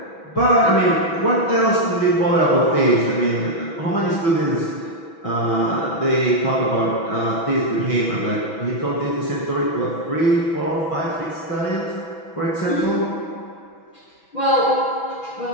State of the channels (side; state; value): right; late; 6.1 ms